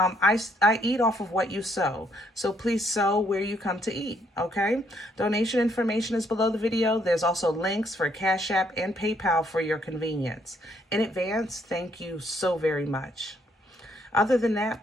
eat off of what you sow. So please sow where you come to eat, okay? Donation information is below the video. There's also links for Cash App and PayPal for your convenience. In advance, thank you so very much. Other than that,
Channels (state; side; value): normal; both; correlation 0.70